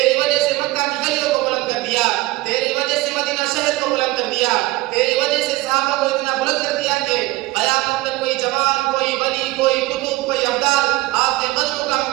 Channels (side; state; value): left; quieter; 19.7 dB